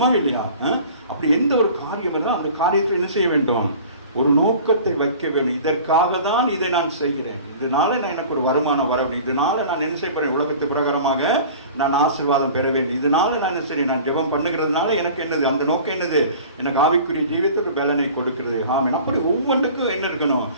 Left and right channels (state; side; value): inverted; both; correlation -0.43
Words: இல்லையா? அப்படி எந்த ஒரு காரியம் இருந்தால் அந்த காரியத்தில் என்ன செய்ய வேண்டும்? ஒரு நோக்கத்தை வைக்க வேண்டும். இதற்காக தான் இதை நான் செய்கிறேன், இதனால நான் எனக்கு ஒரு வருமானம் வர வேண்டும், இதனால நான் என்ன செய்ய போறேன், உலகத்து பிரகாரமாக நான் ஆசீர்வாதம் பெற வேண்டும், இதனால நான் என்ன செய்ய, நான் ஜெபம் பண்ணுகிறதுனால எனக்கு என்னது, அந்த நோக்கம் என்னது, எனக்கு ஆவிக்குரிய ஜீவியத்துக்கு பலனை கொடுக்கிறது. ஆமென். அப்படி ஒவ்வொன்றுக்கும் என்ன இருக்கணும்?